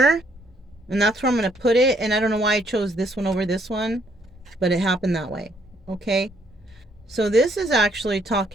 and that's where I'm going to put it. And I don't know why I chose this one over this one, but it happened that way, okay? So this is actually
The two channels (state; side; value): normal; both; correlation 0.69